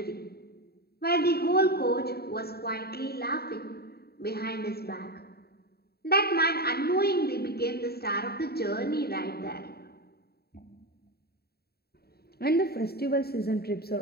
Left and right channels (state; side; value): late; right; 0.46 ms